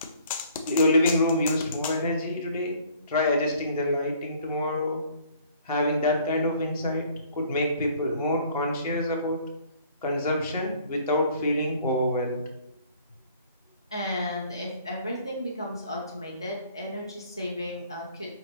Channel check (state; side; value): inverted; both; correlation -0.57